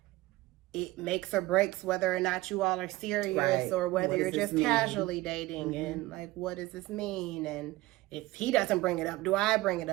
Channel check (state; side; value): quieter; left; 19.0 dB